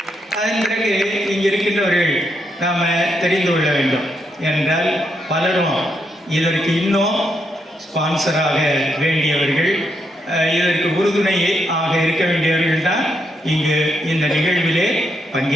அதன் பிறகு இங்கே இருக்கின்றவர்கள் நாம் தெரிந்து கொள்ள வேண்டும் என்றால், பலரும் இதற்கு இன்னும் ஸ்பான்சராக வேண்டியவர்கள், இதற்கு உறுதுணை ஆக இருக்க வேண்டியவர்கள் தான் இங்கு இந்த நிகழ்விலே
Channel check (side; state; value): both; normal; correlation 0.79